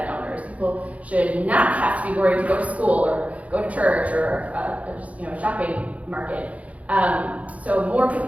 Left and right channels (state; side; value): late; left; 0.067 ms